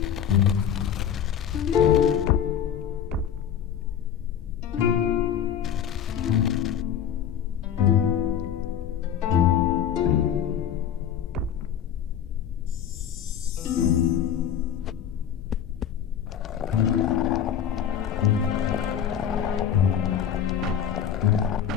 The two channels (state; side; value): quieter; right; 8.9 dB